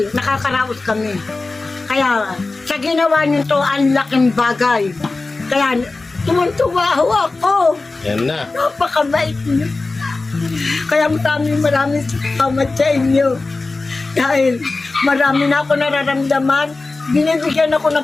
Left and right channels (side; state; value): right; quieter; 3.5 dB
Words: nakakaraos kami. Kaya sa ginawa niyo to, ang laking bagay. Kaya tumuntuwa ako. Yan na. Napakabait niyo. Kaya maraming salamat sa inyo. Dahil marami na ako nararamdaman. Binibigyan ako